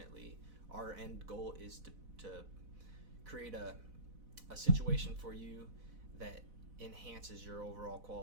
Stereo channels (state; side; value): late; left; 4.0 ms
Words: our end goal is to create a situation for you that enhances your overall